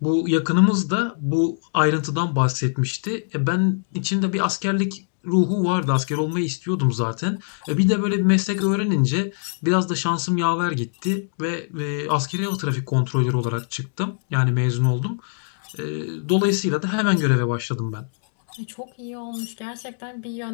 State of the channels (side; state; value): right; silent; digital silence